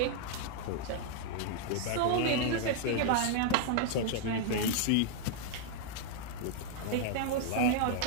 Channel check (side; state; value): both; different; correlation -0.01